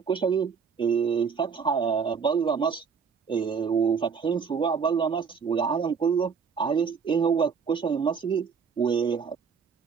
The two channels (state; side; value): quieter; left; 6.1 dB